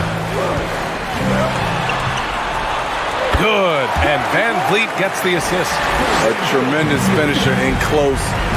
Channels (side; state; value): both; identical; correlation 1.00